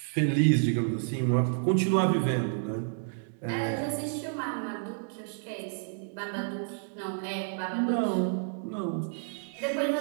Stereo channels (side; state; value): left; silent; digital silence